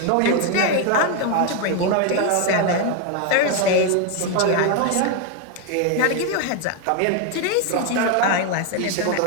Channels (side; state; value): both; different; correlation 0.01